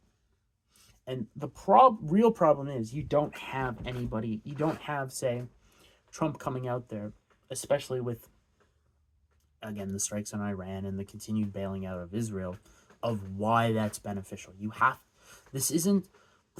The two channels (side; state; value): both; identical; correlation 1.00